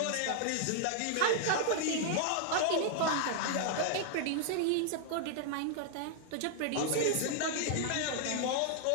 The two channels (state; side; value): different; both; correlation 0.00